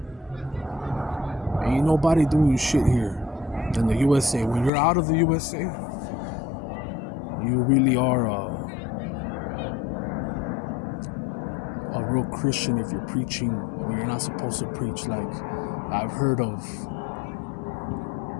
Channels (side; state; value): right; drops out; at 4.7 s